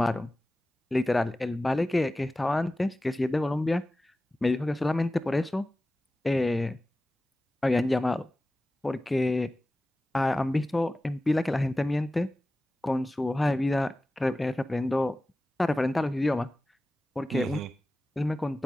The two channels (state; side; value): normal; both; correlation 0.96